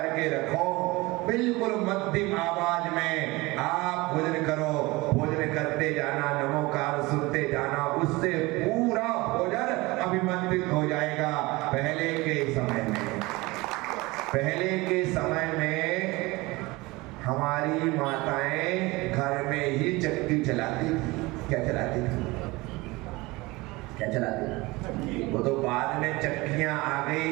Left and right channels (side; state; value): left; quieter; 22.3 dB